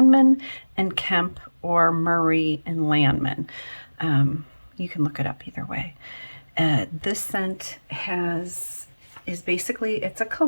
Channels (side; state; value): both; inverted; correlation -1.00